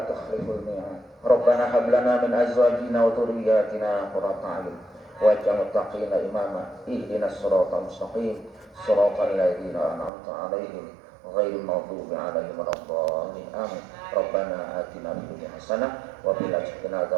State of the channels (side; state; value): left; drops out; at 10.1 s